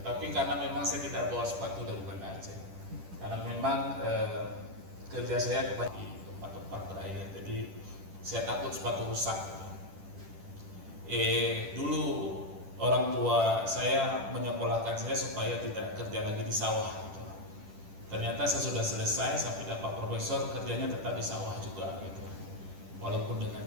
Tapi karena memang saya tidak bawa sepatu dari Banda Aceh, karena memang kerja saya kebanyakan di tempat-tempat berair, jadi saya takut sepatu rusak gitu. Dulu orang tua saya menyekolahkan saya supaya tidak kerja lagi di sawah gitu. Ternyata saya sudah selesai sampai dapat profesor, kerjanya tetap di sawah juga gitu, walaupun dengan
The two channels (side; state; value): left; late; 10 ms